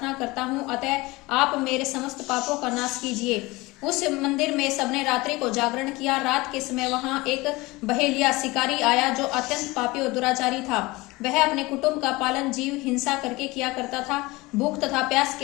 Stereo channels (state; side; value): quieter; right; 21.9 dB